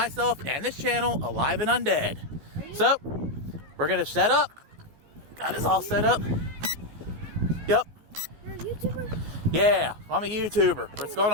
and this channel alive and undead. So, we're going to set up. Got us all set up. Yep. You're a YouTuber? Yeah, I'm a YouTuber. What's going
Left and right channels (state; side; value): late; left; 14 ms